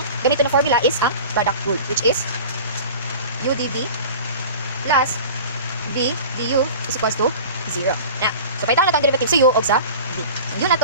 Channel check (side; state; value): both; inverted; correlation -0.38